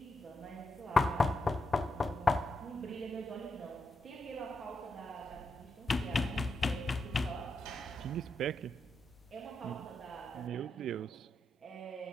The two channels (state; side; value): normal; both; correlation 0.84